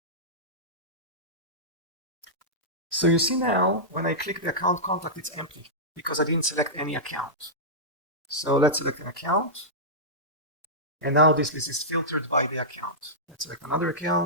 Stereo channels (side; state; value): both; normal; correlation -0.14